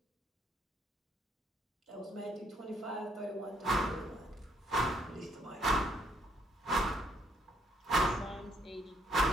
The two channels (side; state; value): both; normal; correlation 0.70